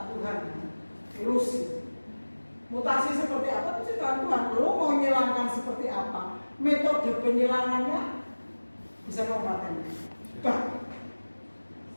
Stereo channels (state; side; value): inverted; both; correlation -1.00